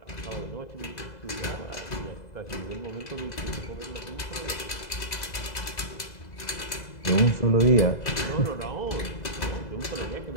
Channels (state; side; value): late; right; 2.0 ms